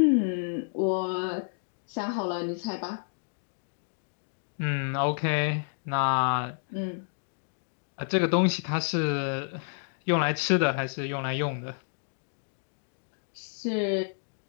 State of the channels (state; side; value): silent; right; digital silence